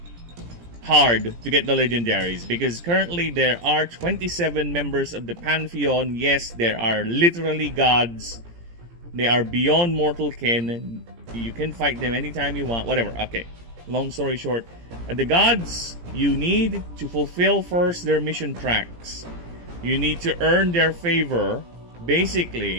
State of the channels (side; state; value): left; late; 17 ms